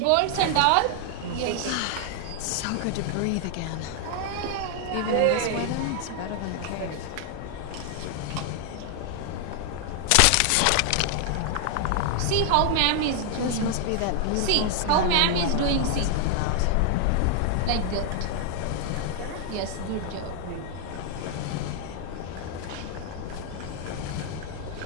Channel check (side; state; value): both; different; correlation 0.00